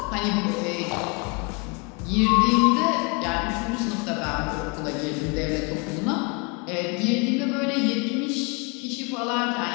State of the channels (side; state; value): right; quieter; 32.1 dB